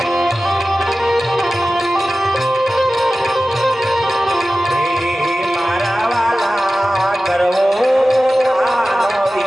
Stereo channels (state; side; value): normal; both; correlation 0.95